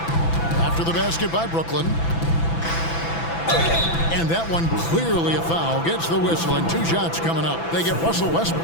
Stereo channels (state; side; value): late; right; 6.0 ms